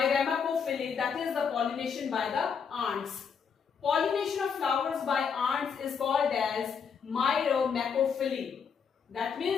that is the pollination by the ants. Pollination of flowers by ants is called as Myrmecophily. That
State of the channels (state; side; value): quieter; right; 6.5 dB